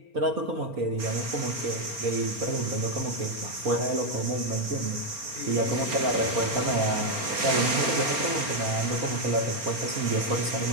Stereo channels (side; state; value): left; late; 4.3 ms